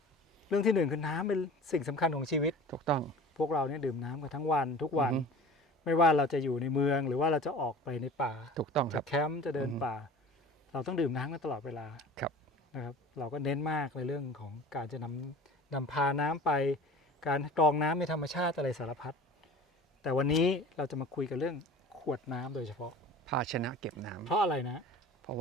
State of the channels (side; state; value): both; normal; correlation 0.41